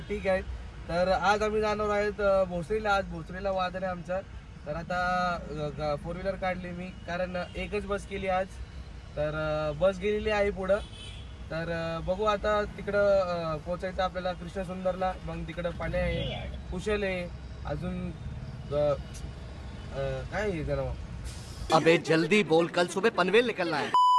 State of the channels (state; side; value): identical; both; correlation 1.00